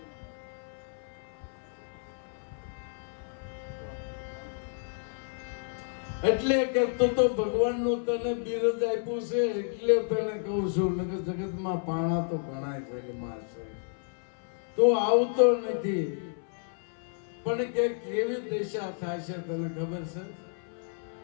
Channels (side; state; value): right; silent; 57 dB below the other